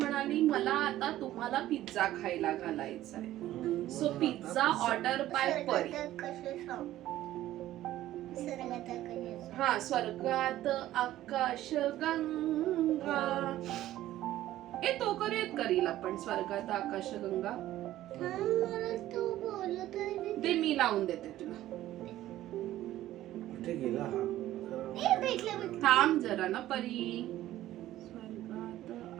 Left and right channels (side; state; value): left; quieter; 14.2 dB